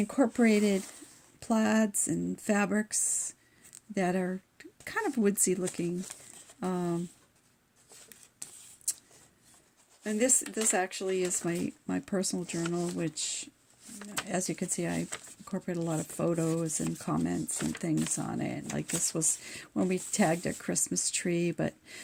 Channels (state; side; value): identical; both; correlation 1.00